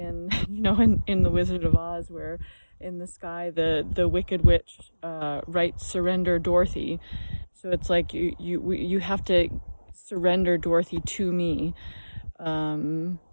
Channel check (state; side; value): inverted; both; correlation -1.00